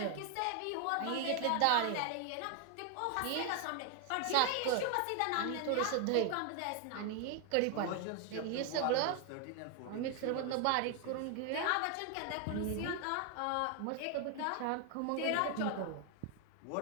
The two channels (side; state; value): both; different; correlation 0.00